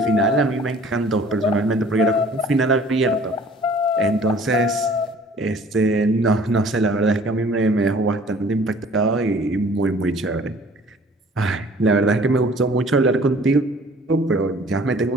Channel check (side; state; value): both; normal; correlation 0.52